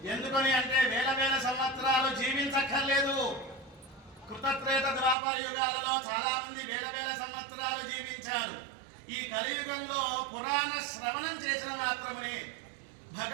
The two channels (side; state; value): left; drops out; at 5.2 s